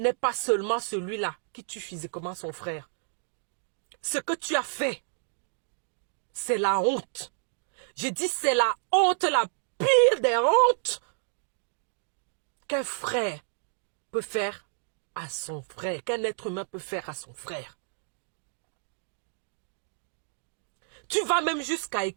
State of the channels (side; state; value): left; silent; digital silence